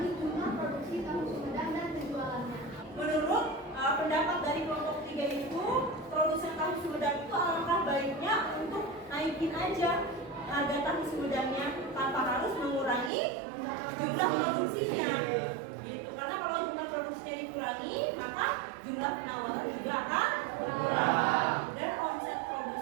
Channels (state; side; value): drops out; left; at 13.1 s